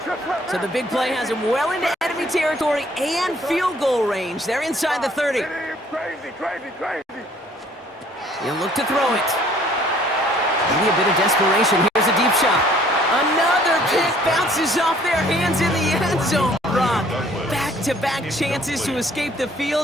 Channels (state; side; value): normal; both; correlation 0.58